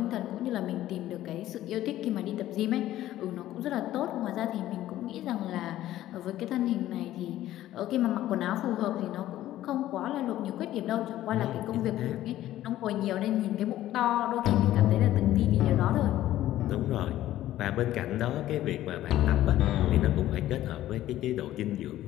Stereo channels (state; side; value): quieter; right; 13.9 dB